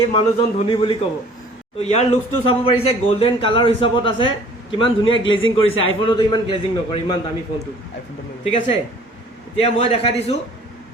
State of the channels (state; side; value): normal; both; correlation 0.52